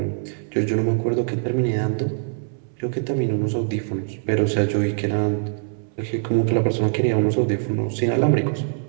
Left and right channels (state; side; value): silent; left; 61 dB below the other